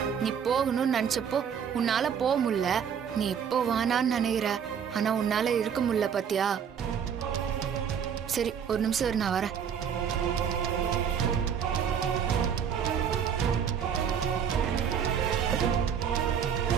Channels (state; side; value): quieter; left; 7.8 dB